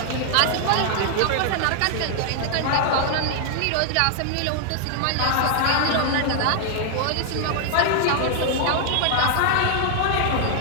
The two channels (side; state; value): both; different; correlation 0.00